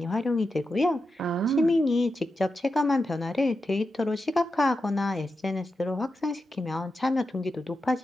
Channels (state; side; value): normal; both; correlation 0.89